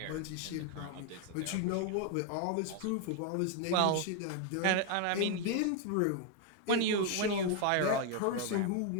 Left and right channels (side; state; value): both; different; correlation 0.01